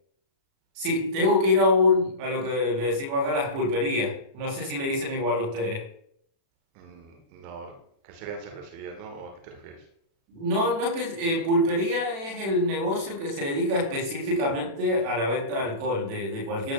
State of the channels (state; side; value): late; left; 36 ms